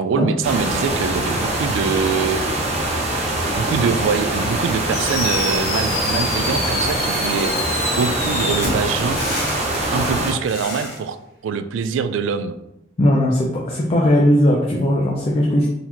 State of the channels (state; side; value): normal; both; correlation 0.40